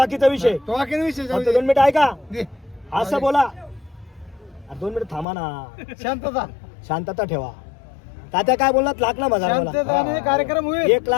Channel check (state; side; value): drops out; right; at 5.2 s